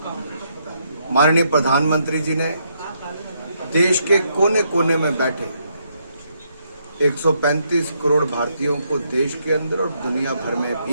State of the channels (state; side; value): inverted; both; correlation -0.75